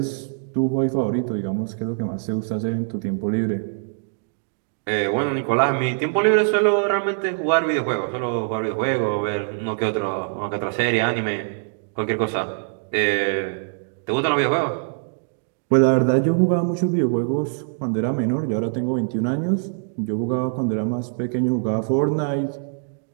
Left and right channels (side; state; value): left; silent; digital silence